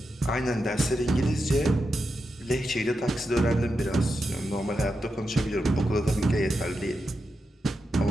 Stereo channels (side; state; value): both; normal; correlation 0.88